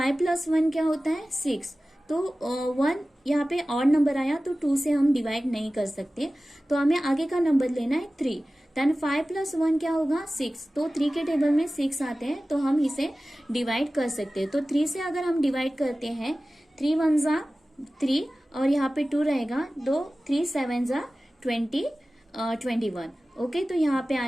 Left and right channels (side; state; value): both; normal; correlation 0.96